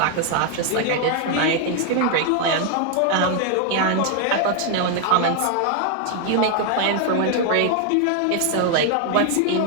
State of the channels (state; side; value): different; both; correlation 0.00